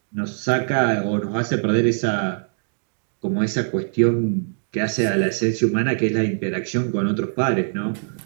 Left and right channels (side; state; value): left; silent; digital silence